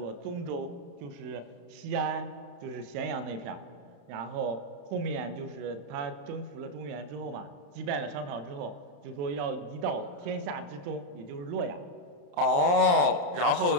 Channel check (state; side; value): late; left; 34 ms